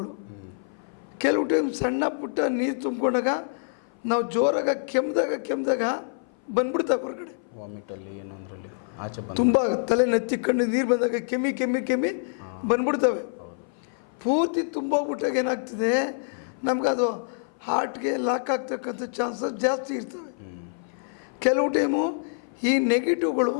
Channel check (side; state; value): right; silent; 57 dB below the other